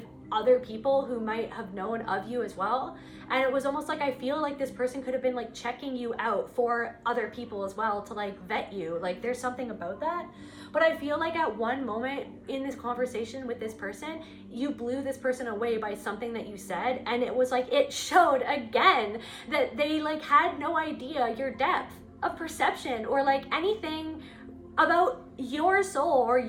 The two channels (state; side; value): identical; both; correlation 1.00